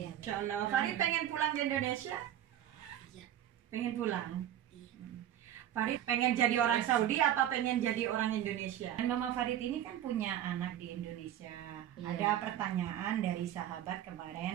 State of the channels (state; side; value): quieter; left; 11.4 dB